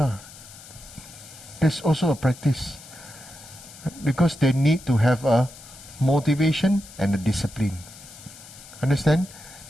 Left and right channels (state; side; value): noise; left; hiss, 18 dB below the sound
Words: There's also a practice. Because they need to have a motivation and a discipline. Understand?